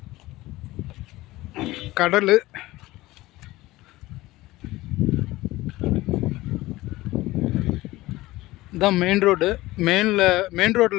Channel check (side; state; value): right; quieter; 18.4 dB